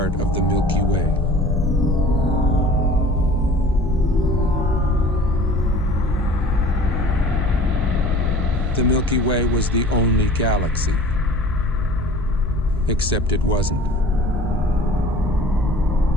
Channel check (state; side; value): normal; both; correlation 0.45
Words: of the Milky Way. The Milky Way was the only galaxy, except it wasn't.